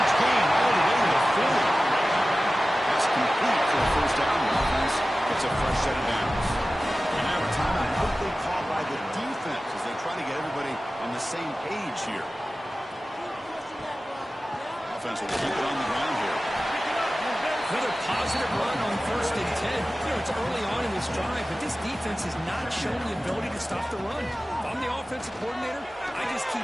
gain all the way to the 40. That's complete for a first down. The offense gets a fresh set of downs. And now a timeout quickly called by the defense as they try to get everybody on the same page here. Offense will keep it on the ground here. Another positive run on 1st and 10. You know, it's early on in this drive, but this defense has not shown the ability to stop the run. If I'm the offensive coordinator, I just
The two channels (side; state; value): both; normal; correlation 0.96